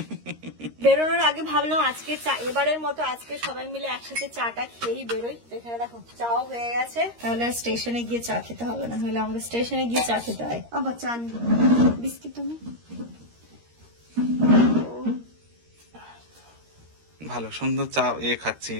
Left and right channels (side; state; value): left; late; 13 ms